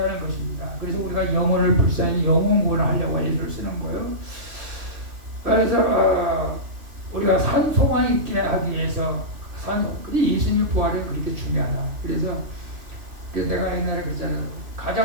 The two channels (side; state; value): left; late; 3.0 ms